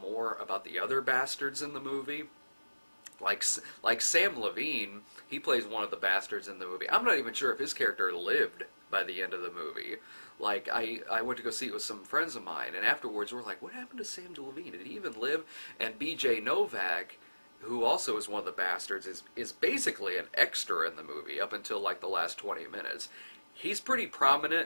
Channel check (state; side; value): inverted; both; correlation -1.00